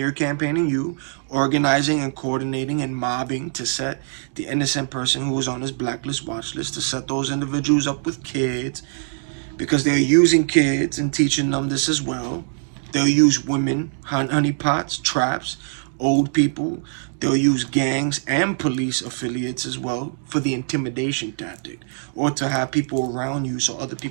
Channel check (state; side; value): silent; left; digital silence